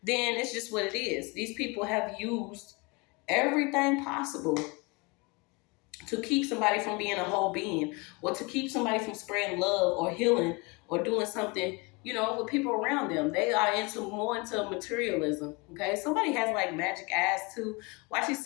then it's just what it is. These people have used everything possible to keep somebody from being a whole being, or to keep somebody from spreading love or healing or doing something, with people around them. They are more into materialism. Okay, somebody has like magic eyes too. Watching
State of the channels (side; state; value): right; quieter; 27.9 dB